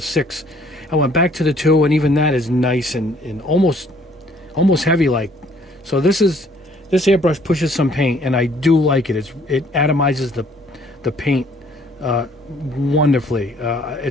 I went back to the 2, and even that is nice and almost heavy like. So this airbrush pushes some paint, and I do like it. It atomizes the paint wonderfully.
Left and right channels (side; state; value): both; normal; correlation 0.61